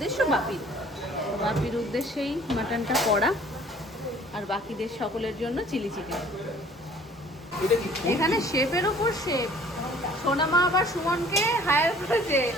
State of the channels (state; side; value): normal; both; correlation 0.53